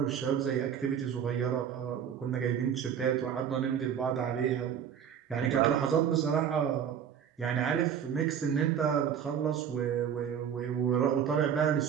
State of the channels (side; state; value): left; quieter; 8.4 dB